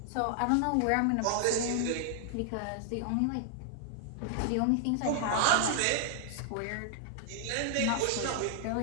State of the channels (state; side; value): different; both; correlation 0.00